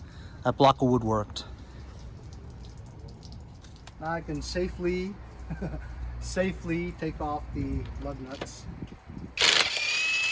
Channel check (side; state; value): both; identical; correlation 1.00